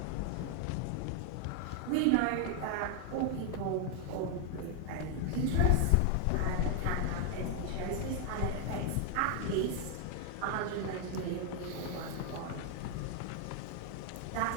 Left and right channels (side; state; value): both; different; correlation 0.00